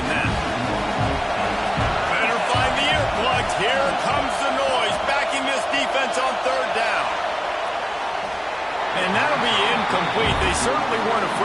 that. Better find the earplugs. Here comes the noise, backing this defense on third down. And that'll be incomplete. They certainly weren't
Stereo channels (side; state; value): both; identical; correlation 1.00